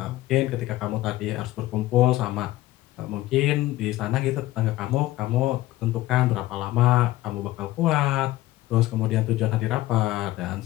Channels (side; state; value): right; quieter; 16.4 dB